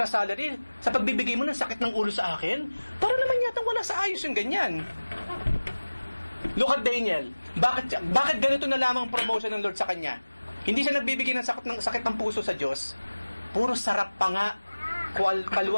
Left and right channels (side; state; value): both; inverted; correlation -1.00